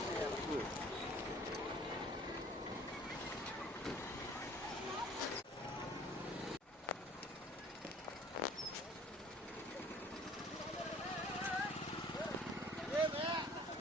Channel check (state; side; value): normal; both; correlation 0.51